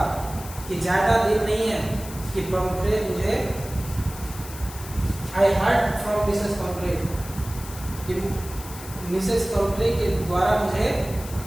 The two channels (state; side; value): noise; left; hiss, 14 dB below the sound